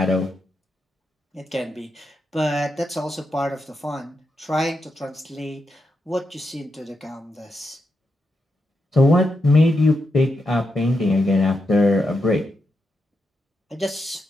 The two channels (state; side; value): normal; both; correlation 0.85